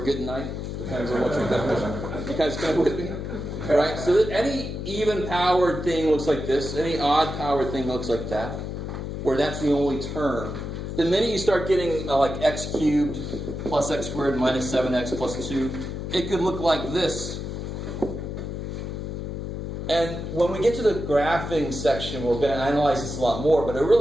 a good night. Depends on what your definition. You guys kind of with me? All right, so that any even-powered thing looks like this. Any odd-powered thing looks like that, where that's the only term. The minute you start getting like x cubed plus x squared minus 7x plus 2, it could look like this. And when we get to the graphing section, we're going to analyze this a lot more, but a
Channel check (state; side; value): noise; left; hum, 5 dB below the sound